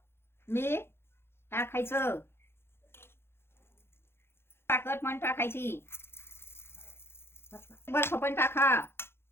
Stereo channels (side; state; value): right; late; 0.12 ms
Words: मीठ टाकायचं. साखर पण टाकायची. बर्फ पण टाका.